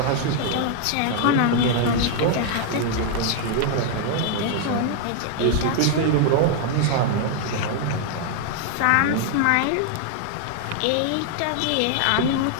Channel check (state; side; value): different; both; correlation 0.00